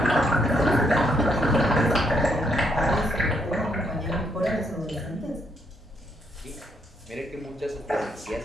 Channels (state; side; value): normal; both; correlation 0.74